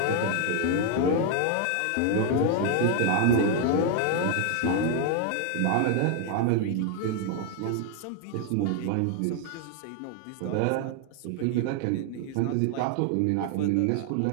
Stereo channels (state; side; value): different; both; correlation 0.00